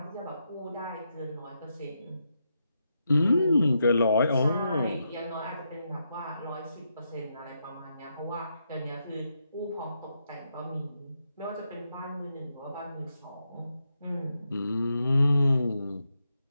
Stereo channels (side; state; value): both; inverted; correlation -0.83